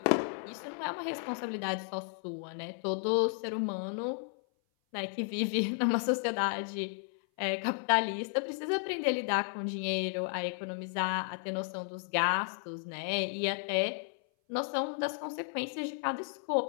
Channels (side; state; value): right; silent; 55 dB below the other